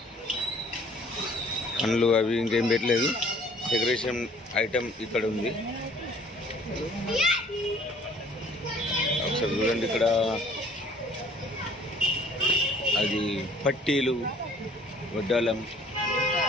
కళ్ళు అవి ఇంకేం పెట్టలేదు. డెకరేషన్ ఐటమ్ ఇక్కడ ఉంది. ఒకసారి చూడండి ఇక్కడ అది పట్టీలు వడ్డాలం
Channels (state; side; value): normal; both; correlation 0.55